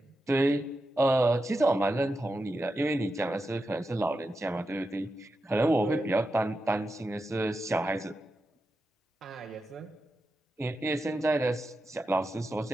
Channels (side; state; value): both; normal; correlation 0.89